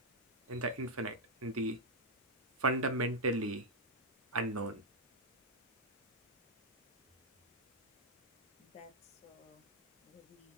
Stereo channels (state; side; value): normal; both; correlation -0.03